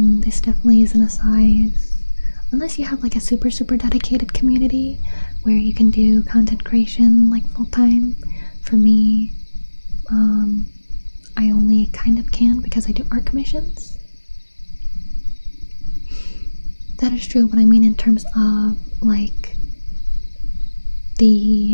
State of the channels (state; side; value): inverted; both; correlation -1.00